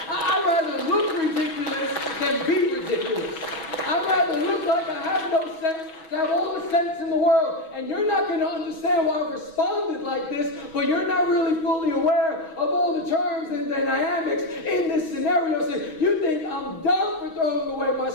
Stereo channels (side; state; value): right; late; 6.2 ms